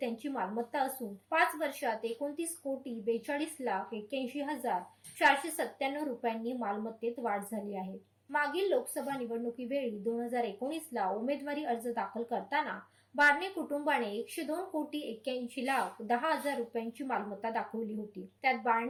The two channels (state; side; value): identical; both; correlation 1.00